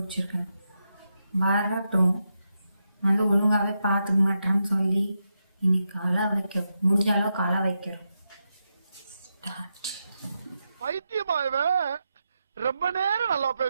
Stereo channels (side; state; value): both; inverted; correlation -0.86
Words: வரட்டும், வந்து ஒழுங்காகவே பார்த்துக்க மாட்டேன்னு சொல்லி இன்னைக்கு அழ வைக்கிறோம், முடிஞ்ச அளவுக்கு அழ வைக்கிறோம். பைத்தியமாயவே ரொம்ப நேரம் நல்லா